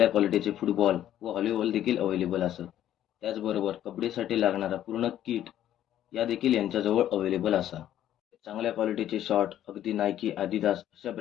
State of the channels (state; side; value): quieter; right; 11.8 dB